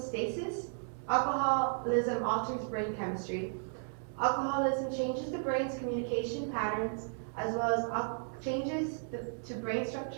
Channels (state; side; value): silent; left; digital silence